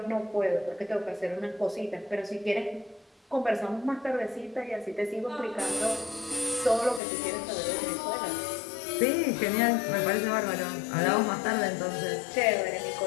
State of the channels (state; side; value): drops out; right; at 7.0 s